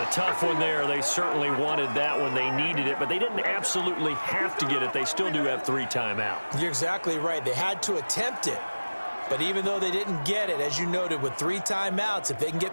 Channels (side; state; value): both; inverted; correlation -1.00